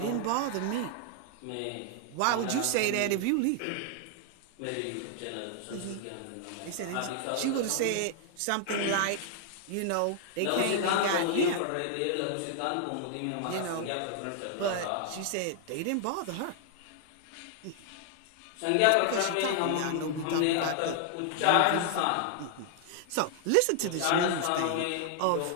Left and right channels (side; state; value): both; different; correlation 0.00